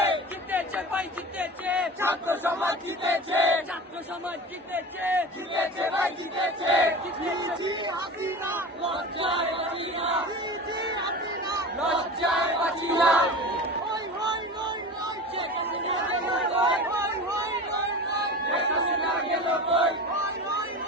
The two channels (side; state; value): both; normal; correlation 0.32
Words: জিতেছে ভাই জিতেছে, ছাত্র সমাজ জিতেছে, ছাত্র সমাজ জিতেছে, জিতেছে ভাই জিতেছে। জি জি হাসিনা, লজ্জায় হাসিনা, জি জি হাসিনা, লজ্জায় হাসিনা।